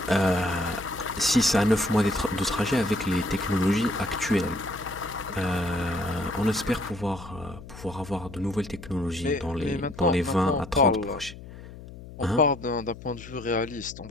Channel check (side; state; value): left; noise; hum, 15 dB below the sound